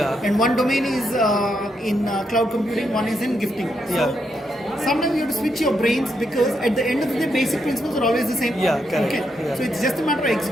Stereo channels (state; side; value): normal; both; correlation 0.80